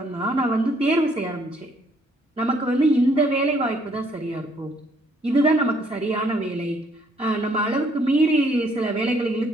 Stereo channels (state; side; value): normal; both; correlation 0.66